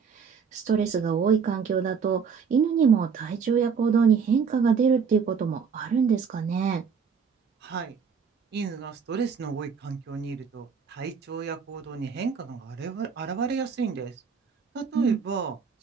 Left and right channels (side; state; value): left; quieter; 6.2 dB